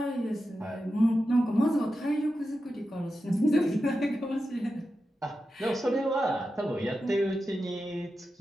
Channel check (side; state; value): both; normal; correlation 0.91